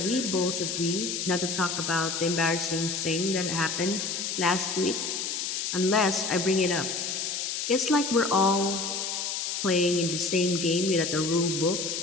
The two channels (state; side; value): noise; left; hiss, 2 dB below the sound